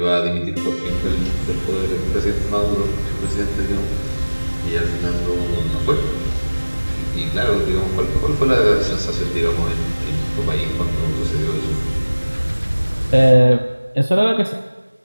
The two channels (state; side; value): inverted; both; correlation -1.00